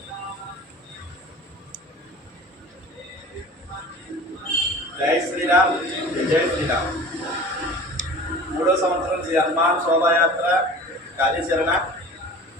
జై శ్రీరామ్ జై శ్రీరామ్. 3వ సంవత్సరం శ్రీ హనుమాన్ శోభాయాత్ర కార్యాచరణ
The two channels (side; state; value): both; normal; correlation 0.40